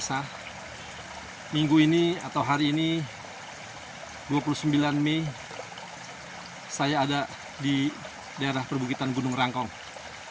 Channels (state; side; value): identical; both; correlation 1.00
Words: Minggu ini atau hari ini 29 Mei saya ada di daerah perbukitan Gunung Rangkong.